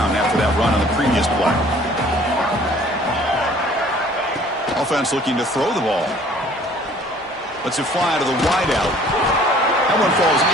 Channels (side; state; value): both; normal; correlation 0.54